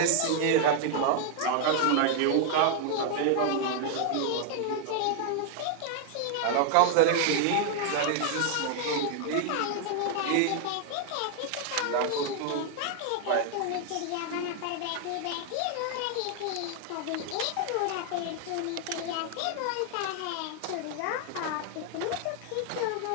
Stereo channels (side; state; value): both; different; correlation 0.00